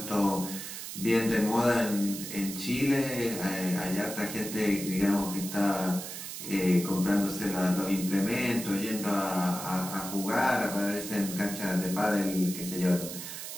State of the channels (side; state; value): right; noise; hiss, 8 dB below the sound